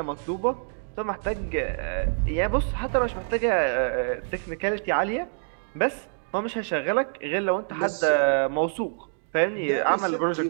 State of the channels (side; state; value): left; silent; digital silence